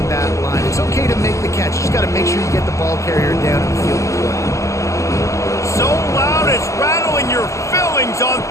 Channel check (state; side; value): late; right; 0.15 ms